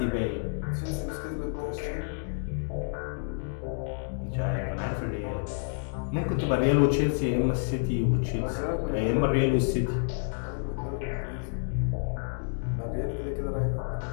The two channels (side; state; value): right; silent; digital silence